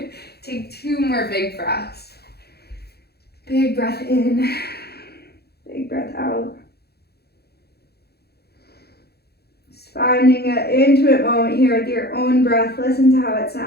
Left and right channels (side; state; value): right; late; 0.47 ms